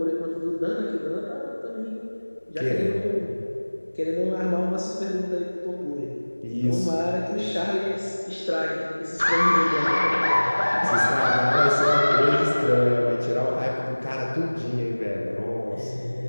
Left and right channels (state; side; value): inverted; both; correlation -1.00